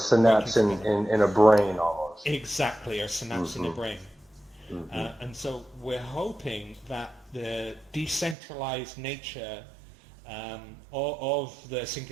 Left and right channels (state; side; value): drops out; left; at 8.3 s